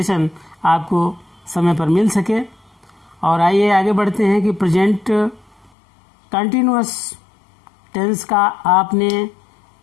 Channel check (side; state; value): right; drops out; at 5.7 s